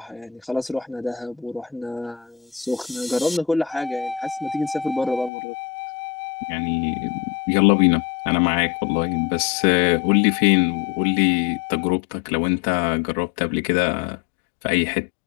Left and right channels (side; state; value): right; drops out; at 5.3 s